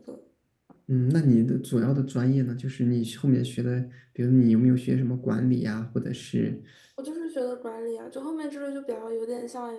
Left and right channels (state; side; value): identical; both; correlation 1.00